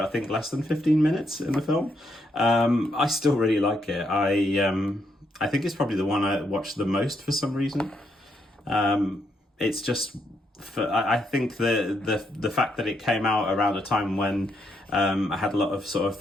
think, less than 15 minutes in the film, I still really like it. I think it's probably the one I watched the most for some reason. It's just, I think the fact that it came out around a time when I had a lot of sort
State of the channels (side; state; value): both; normal; correlation 0.77